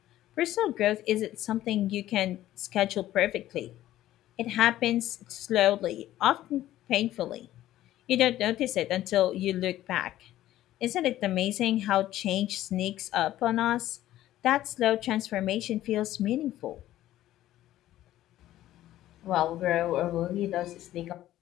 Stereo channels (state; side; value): quieter; right; 13.9 dB